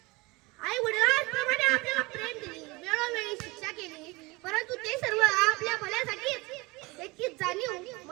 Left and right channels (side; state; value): left; quieter; 23.7 dB